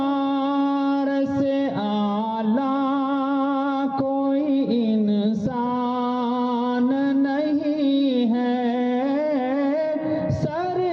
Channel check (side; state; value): both; identical; correlation 1.00